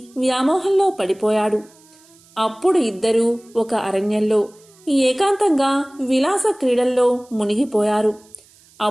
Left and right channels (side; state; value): right; noise; hiss, 28 dB below the sound